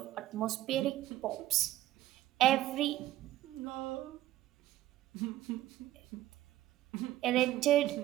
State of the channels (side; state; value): left; quieter; 14.4 dB